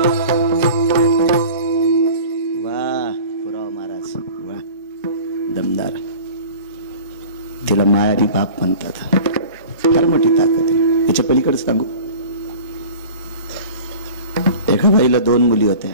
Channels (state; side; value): inverted; both; correlation -0.40